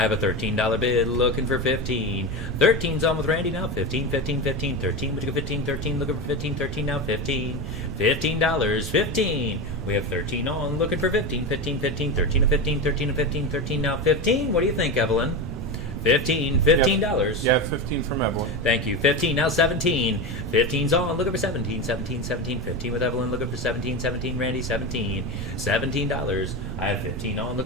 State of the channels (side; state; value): right; noise; rumble, 9 dB below the sound